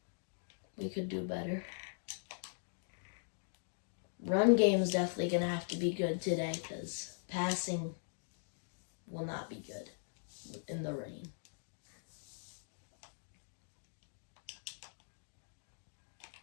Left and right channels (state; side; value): silent; right; digital silence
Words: We could do better. Run game is definitely going to have to be good today because passing will not be good in the rain.